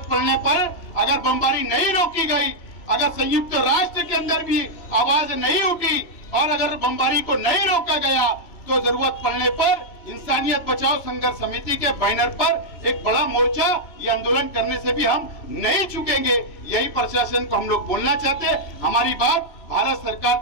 पड़ने पर अगर बमबारी नहीं रोकी गई, अगर संयुक्त राष्ट्र के अंदर भी आवाज नहीं उठी और अगर बमबारी को नहीं रोका गया, तो जरूरत पड़ने पर इंसानियत बचाओ संघर्ष समिति के बैनर पर एक बड़ा मोर्चा, ये आंदोलन करने से भी हम नहीं चुकेंगे। यही प्रशासन को हम लोग बोलना चाहते हैं। हमारी बात भारत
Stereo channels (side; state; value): right; late; 3.0 ms